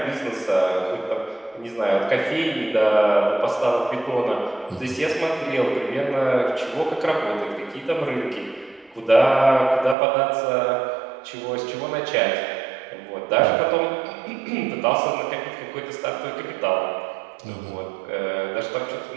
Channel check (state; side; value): drops out; left; at 10.0 s